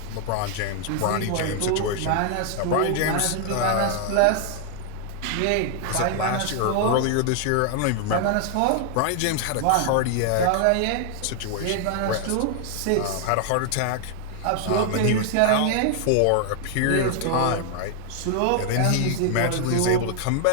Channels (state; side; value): different; both; correlation 0.00